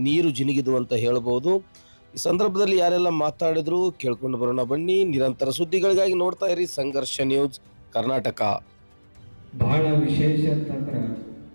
ನೀರು ಜಿನುಗಿದು ಅಂತ ಹೇಳ್ಬೋದು. ಈ ಸಂದರ್ಭದಲ್ಲಿ ಯಾರೆಲ್ಲ ಮಾತಾಡಿದ್ರು ಕೇಳ್ಕೊಂಡು ಬರೋಣ ಬನ್ನಿ. ನಿರಂತರ ಸುದ್ದಿಗಳಿಗಾಗಿ ನೋಡ್ತಾ ಇರಿ ಸಂಘರ್ಷ ನ್ಯೂಸ್ ಕರ್ನಾಟಕ. ಬಹಳ ವಿಶೇಷ ಅಂತಂದ್ರೆ,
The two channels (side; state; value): both; inverted; correlation -1.00